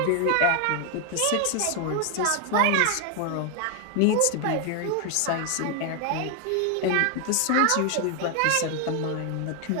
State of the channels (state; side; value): different; both; correlation 0.00